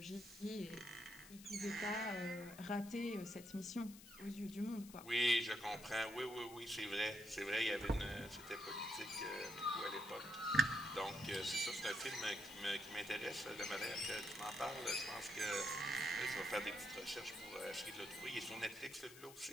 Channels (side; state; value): left; noise; hiss, 17 dB below the sound